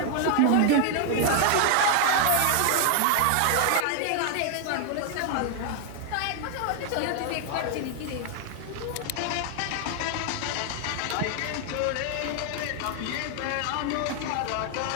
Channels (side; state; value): both; different; correlation 0.00